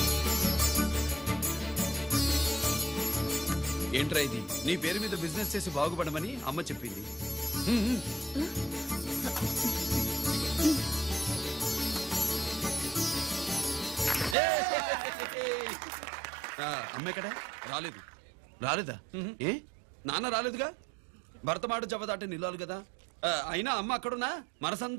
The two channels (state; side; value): drops out; left; at 14.4 s